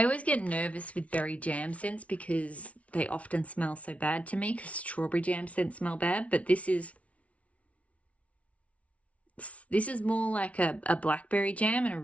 always get nervous with berry jam scents because they often smell so bad to me, because strawberry jam scents smell bad, but this is more like a blackberry jam, and a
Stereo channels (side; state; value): right; late; 0.065 ms